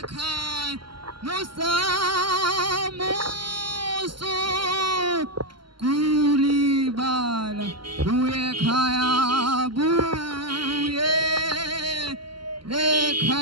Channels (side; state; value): left; late; 0.73 ms